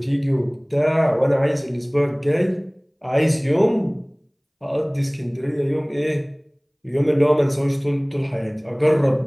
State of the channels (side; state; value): both; identical; correlation 1.00